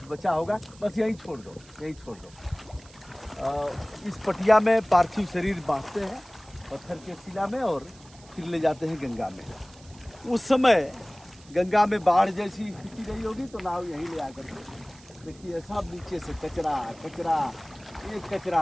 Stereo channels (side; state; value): right; noise; hiss, 24 dB below the sound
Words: बचा होगा, बस यहीं छोड़ दो, यहीं छोड़ दो। इस पटिया में पार्थिव शरीर बांधते हैं पत्थर के शिला में और फिर ले जाते हैं गंगा में। उस समय गंगा में बाढ़ जैसी स्थिति रही होगी तो नाव यहीं ले आकर के देखिए सब नीचे से कचरा कचरा, एक कचरा